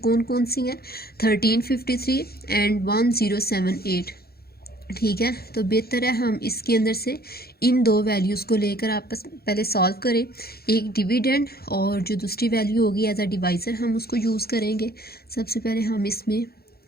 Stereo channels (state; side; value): late; right; 0.45 ms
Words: कौन सी हैं, 1353 एंड 1078, ठीक है। तो बेहतर है हम इसके अंदर से इन 2 वैल्यूज़ को लेकर आपस पहले सॉल्व करें, एक डिविडेंड और जो दूसरी वैल्यू होगी एज अ डिवाइज़र हम उसको यूज़ करेंगे। सबसे पहले हम इसमें